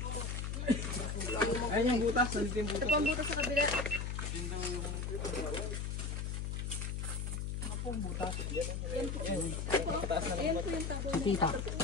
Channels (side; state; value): left; noise; hum, 2 dB below the sound